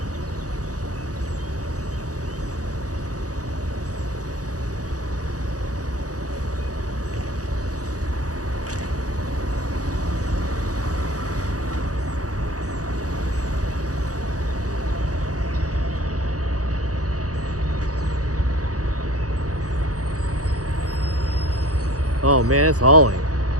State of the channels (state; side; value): late; left; 0.67 ms